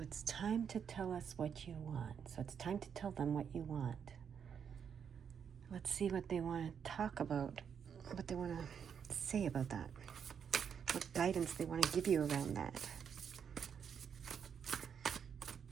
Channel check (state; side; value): quieter; left; 7.4 dB